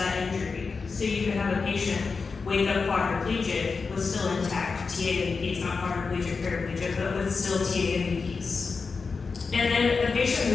injury. So you could have a patient wake up quadriplegic with still intact TAMEPs, not quadriplegic, paraplegic, but with still TAMEPs. And then the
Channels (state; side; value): quieter; right; 4.7 dB